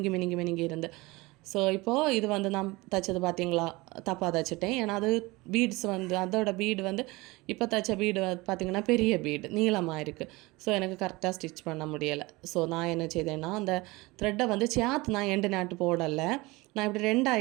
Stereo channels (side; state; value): left; quieter; 22.6 dB